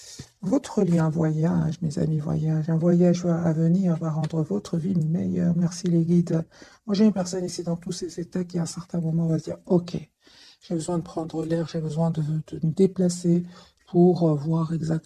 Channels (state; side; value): identical; both; correlation 1.00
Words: Votre lien voyage, mes amis, voyage, un voyage à venir va rendre votre vie meilleure. Merci les guides. Moi, j'ai une personne ici dans tous ces états qui, à un certain moment, va se dire, ok, j'ai besoin de prendre l'air, j'ai besoin de me déplacer pour voir